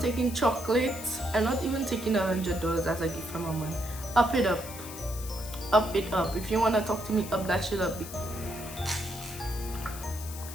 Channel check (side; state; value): left; noise; hiss, 12 dB below the sound